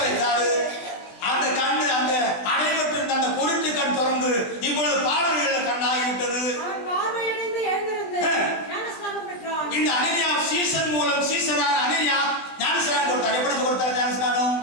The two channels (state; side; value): late; right; 20 ms